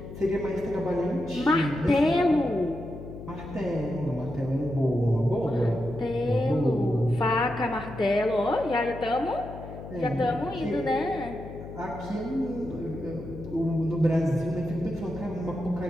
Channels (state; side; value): noise; left; hum, 12 dB below the sound